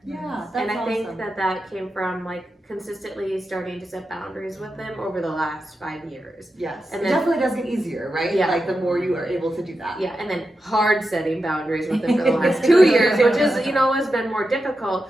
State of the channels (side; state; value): both; normal; correlation 0.89